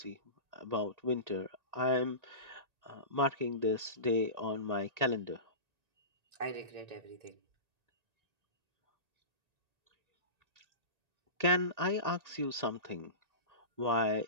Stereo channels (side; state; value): left; late; 1.8 ms